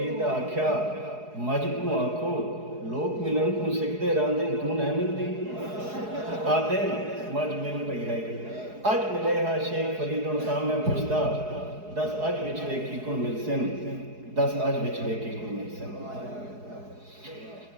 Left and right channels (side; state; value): left; late; 4.7 ms